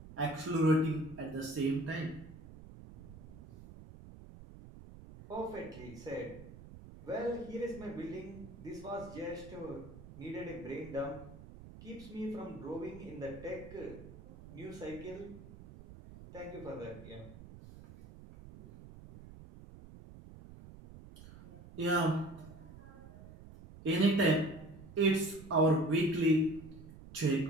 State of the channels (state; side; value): noise; right; rumble, 16 dB below the sound